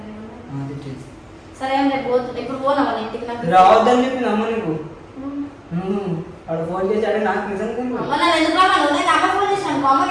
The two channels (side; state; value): both; identical; correlation 1.00